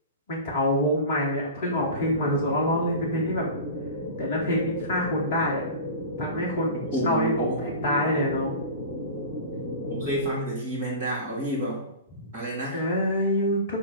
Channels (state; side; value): inverted; both; correlation -0.32